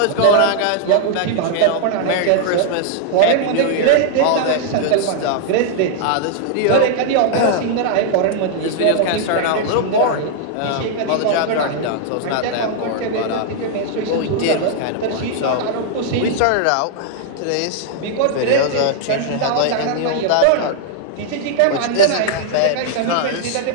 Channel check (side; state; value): both; different; correlation 0.00